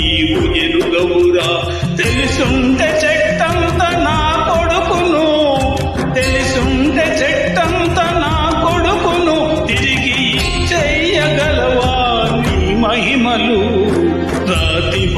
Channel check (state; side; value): identical; both; correlation 1.00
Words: ఎరుగవురా. తెలుసుంటే చెట్టంత నా కొడుకును, తెలుసుంటే చెట్టంత నా కొడుకును తిరిగి చెయ్యగలవా నీ మహిమలు. రాతి